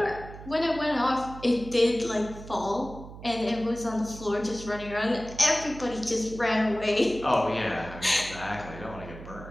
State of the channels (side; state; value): right; noise; hum, 14 dB below the sound